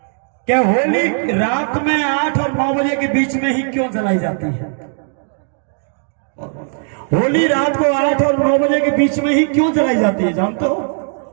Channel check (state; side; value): silent; left; 63 dB below the other